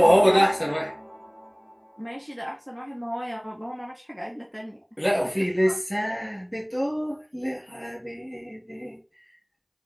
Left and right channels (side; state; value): both; identical; correlation 1.00